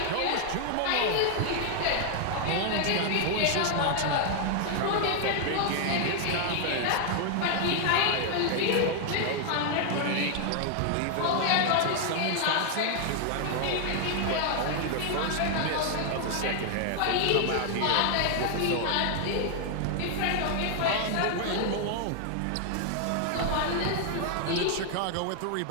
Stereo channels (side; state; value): both; different; correlation 0.00